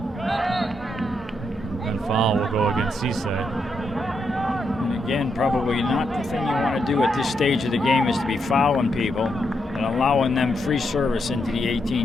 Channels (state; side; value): normal; both; correlation 0.81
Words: And foul will go against Cisse. And again, probably not the thing you want to do at this stage of the game is to be fouling people and allowing them free service into the